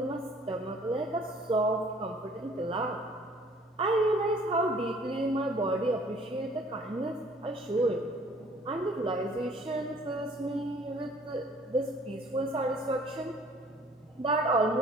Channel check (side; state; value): both; normal; correlation 0.55